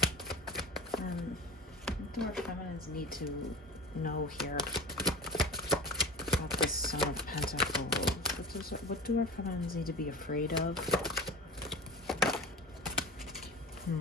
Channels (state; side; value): normal; both; correlation 0.32